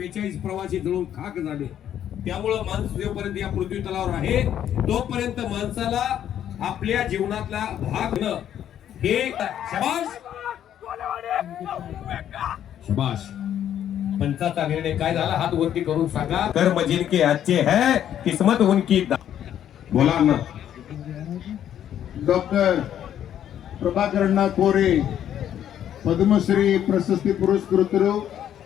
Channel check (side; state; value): right; quieter; 10.4 dB